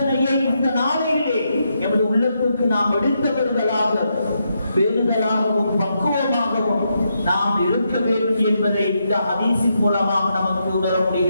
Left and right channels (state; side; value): inverted; both; correlation -0.81